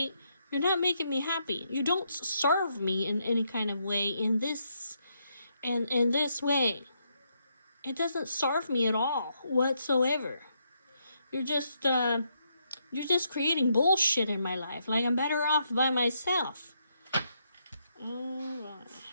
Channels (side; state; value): both; inverted; correlation -0.78